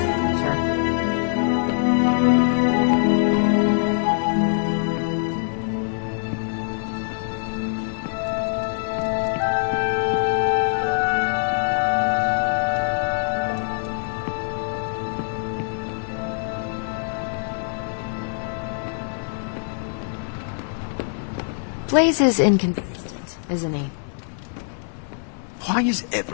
adventure. Blaze is inconsistent, isn't he? Why is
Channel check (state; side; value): silent; right; 57 dB below the other